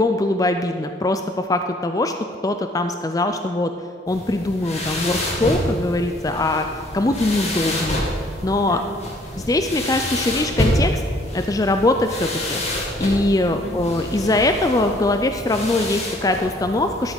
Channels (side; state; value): both; normal; correlation 0.60